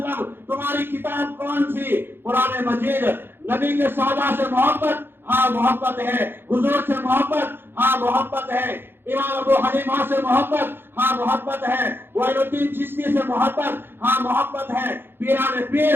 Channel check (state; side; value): late; left; 0.10 ms